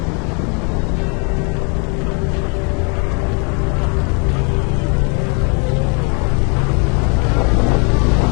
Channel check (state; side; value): quieter; right; 35.6 dB